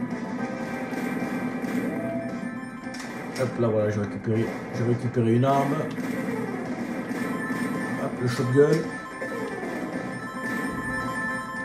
Hop là, voilà, j'ai récupéré une arme. Hop, le shotgun.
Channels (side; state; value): both; identical; correlation 1.00